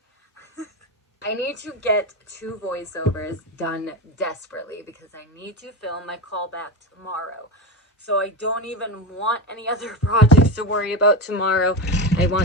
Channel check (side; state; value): both; normal; correlation 0.20